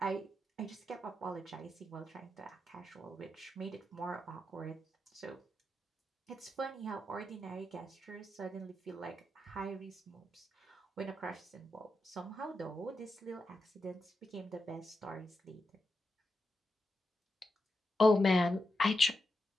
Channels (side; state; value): both; normal; correlation 0.87